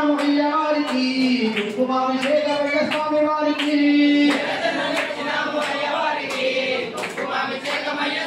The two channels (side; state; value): both; identical; correlation 1.00